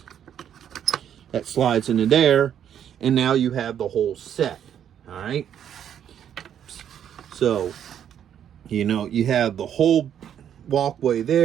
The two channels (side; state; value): left; quieter; 9.4 dB